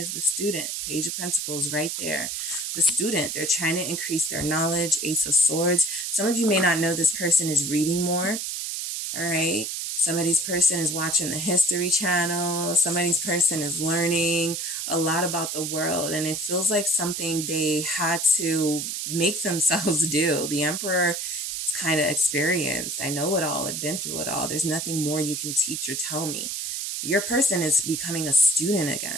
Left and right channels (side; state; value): right; noise; hiss, 3 dB below the sound